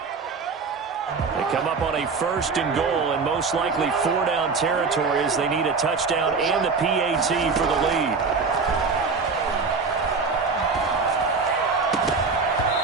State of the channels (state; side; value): quieter; left; 4.7 dB